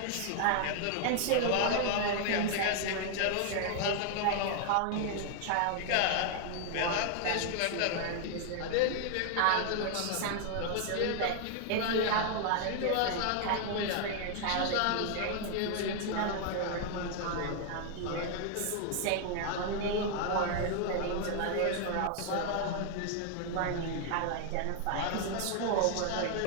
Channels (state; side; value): different; both; correlation 0.00